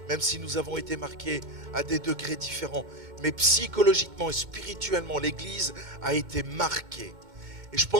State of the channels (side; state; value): left; late; 2.1 ms